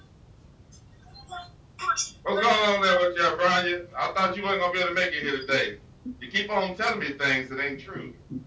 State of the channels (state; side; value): identical; both; correlation 1.00